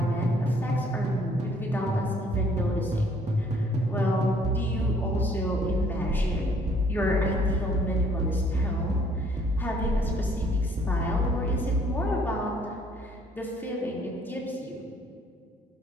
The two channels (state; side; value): normal; both; correlation 0.62